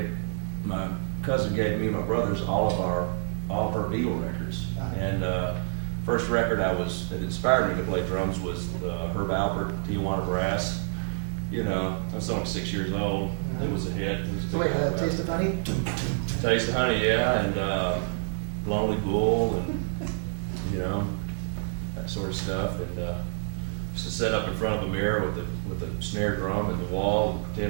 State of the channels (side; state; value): left; silent; digital silence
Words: me and my brothers all of her Beatle records. And first record that inspired me to play drums was Herb Alpert, Tijuana Brass. You know, I was only 6 years old. It was a hit. It was a So wait, Taste of Honey? Dun, dun, dun. Taste of Honey, yeah, and Lonely Bull, and you know, that sort of stuff. And used to sit up in front of a mirror with a snare drum in the wall and